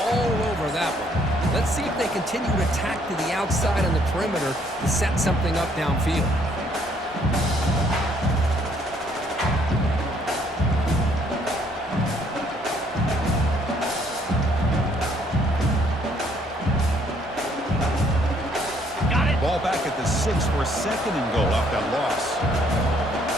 over that one. Let's see if they continue to attack to the outside on the perimeter to set something up downfield. Ball back at the 6 for a 2nd and goal off that loss.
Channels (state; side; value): normal; both; correlation 0.66